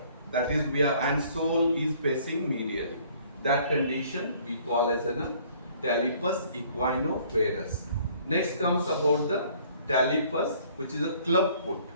That is we are, and sole is facing medially. That condition we call as a talipus equino-varus. Next comes about the talipus, which is a club foot.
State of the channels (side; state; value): both; inverted; correlation -0.57